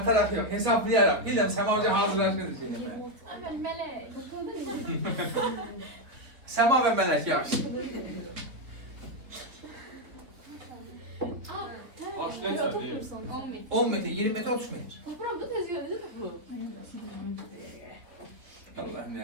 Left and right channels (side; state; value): left; late; 3.5 ms